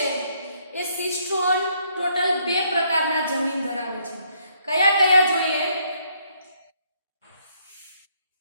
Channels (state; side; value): inverted; both; correlation -0.70